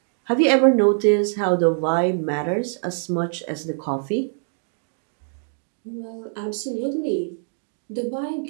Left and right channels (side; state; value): left; silent; digital silence